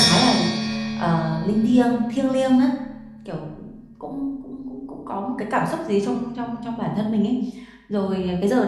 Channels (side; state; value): both; identical; correlation 1.00